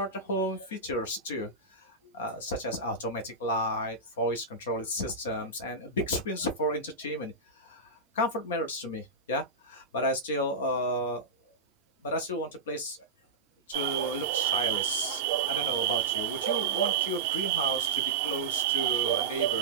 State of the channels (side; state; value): left; quieter; 3.5 dB